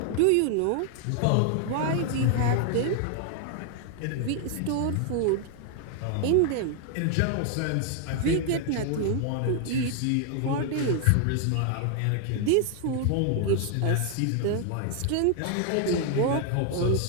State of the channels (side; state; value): both; different; correlation 0.00